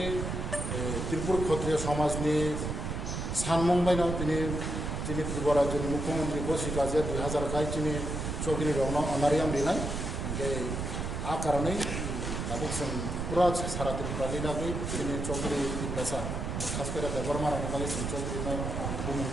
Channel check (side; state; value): right; noise; rumble, 3 dB below the sound